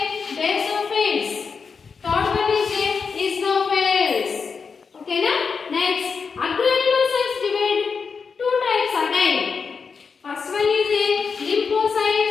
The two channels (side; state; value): right; quieter; 5.5 dB